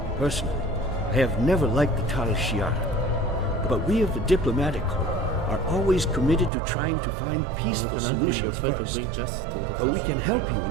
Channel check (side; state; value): left; drops out; at 6.5 s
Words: Personally, I have never liked the Tal Shiar, but we of the diplomatic corps are always committed to trying to find peaceful solutions first. But we can help you in